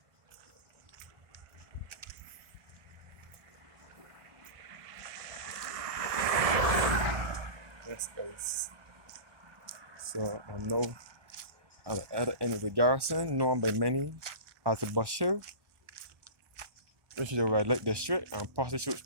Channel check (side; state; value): left; late; 1.1 ms